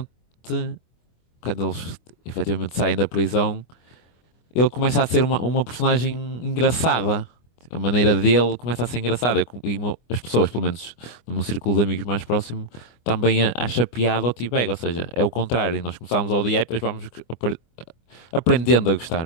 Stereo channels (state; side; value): late; right; 25 ms